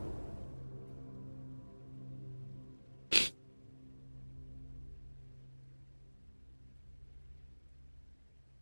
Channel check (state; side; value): inverted; both; correlation -1.00